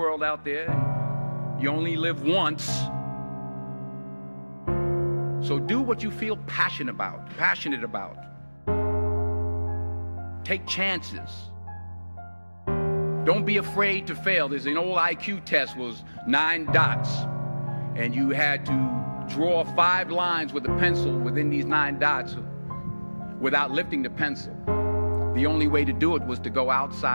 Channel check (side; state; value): both; inverted; correlation -1.00